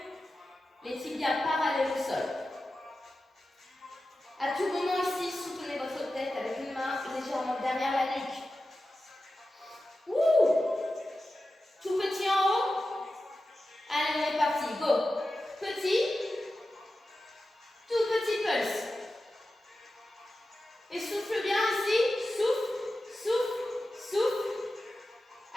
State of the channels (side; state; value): both; normal; correlation 0.93